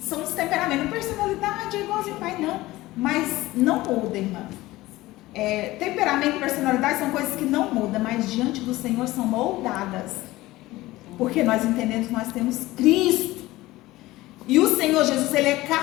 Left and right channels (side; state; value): right; quieter; 18.2 dB